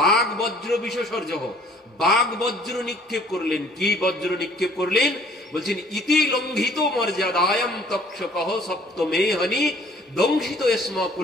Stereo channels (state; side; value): normal; both; correlation 0.56